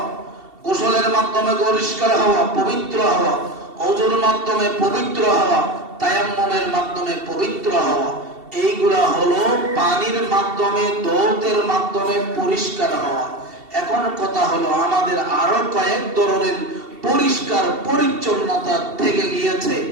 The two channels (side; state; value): left; late; 2.7 ms